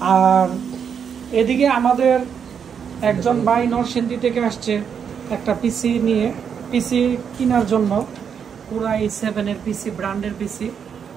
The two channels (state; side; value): quieter; left; 7.3 dB